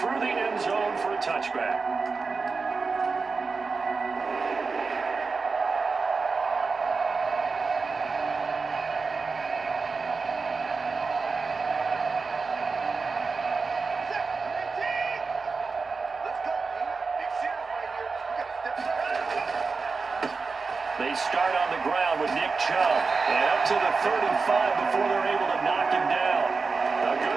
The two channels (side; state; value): left; quieter; 4.5 dB